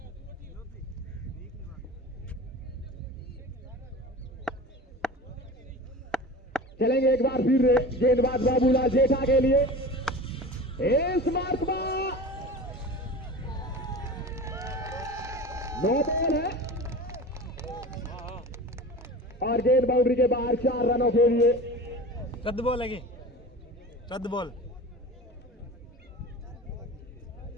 चलेंगे एक बार फिर गेंदबाज बाबूलाल जेठा के लिए। इस मार्क में 9 बॉल है और गेंद बाउंड्री के बाहर 4 रनों के लिए। रद्द बॉल है, रद्द बॉल।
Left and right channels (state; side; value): normal; both; correlation 0.34